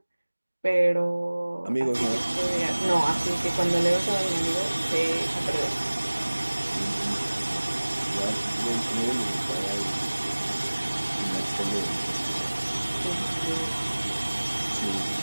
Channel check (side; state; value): both; inverted; correlation -1.00